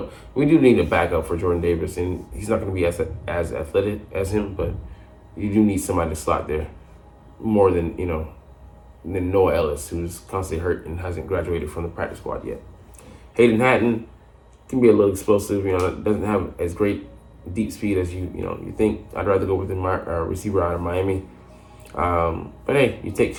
We do need a backup for Jordan Davis, and he's not going to be as athletic as him, but you do need somebody to slot there more than Noah Ellis, who's constantly hurt and hasn't graduated from the practice squad yet. Hayden Hatton can be a little explosive, doesn't have as great deep speed as you think. I'd rather go with the receiver out of Miami. But hey, you take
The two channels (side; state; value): both; identical; correlation 1.00